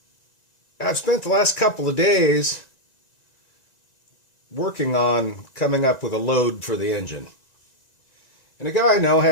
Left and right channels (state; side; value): late; right; 1.9 ms